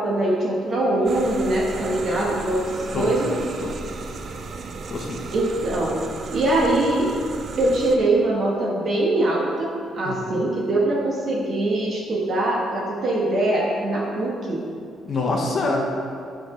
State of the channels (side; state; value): both; normal; correlation 0.72